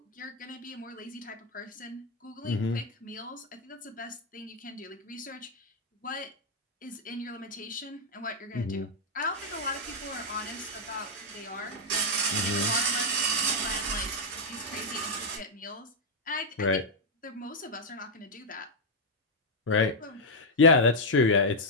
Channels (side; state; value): both; normal; correlation -0.03